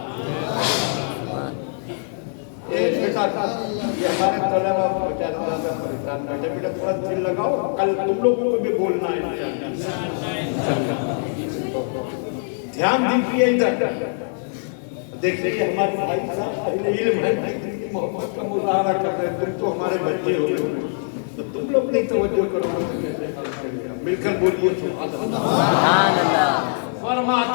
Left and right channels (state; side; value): silent; right; digital silence